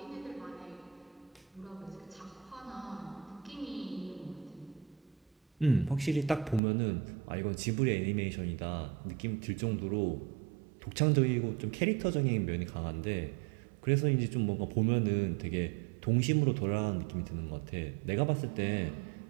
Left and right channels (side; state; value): left; drops out; at 6.6 s